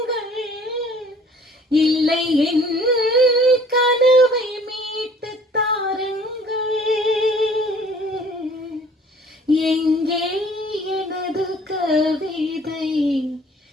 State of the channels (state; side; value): normal; both; correlation 0.53